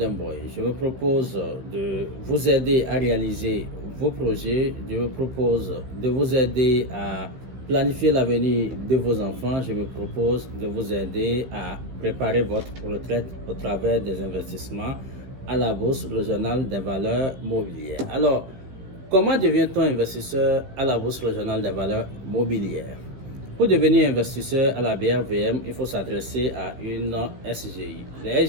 Boy. Je me propose de vous aider à réaliser vos projets. Je me propose de vous aider à planifier l'avenir de vos enfants. Je me propose de vous aider à préparer votre retraite au travers des investissements à la Bourse régionale des valeurs mobilières. Alors, comment devient-on investisseur à la Bourse régionale des valeurs mobilières? Pour devenir investisseur à la BRVM, il faut s'adresser à une SGI. Les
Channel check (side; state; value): left; late; 16 ms